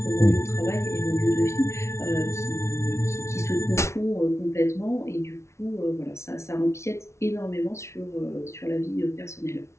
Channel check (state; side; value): late; right; 0.13 ms